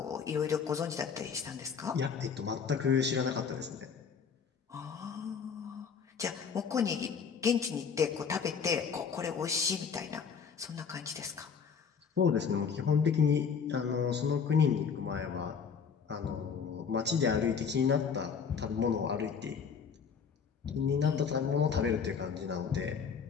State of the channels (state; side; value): quieter; right; 6.3 dB